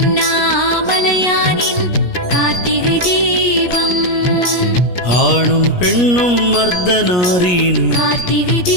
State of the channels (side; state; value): right; late; 17 ms